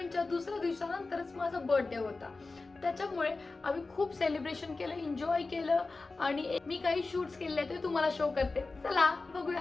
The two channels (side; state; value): right; quieter; 3.7 dB